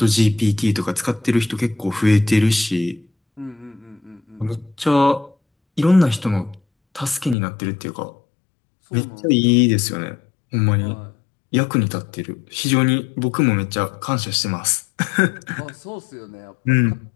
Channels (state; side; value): drops out; right; at 7.4 s